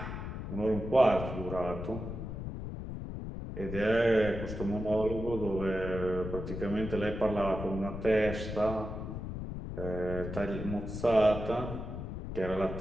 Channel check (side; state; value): left; noise; rumble, 7 dB below the sound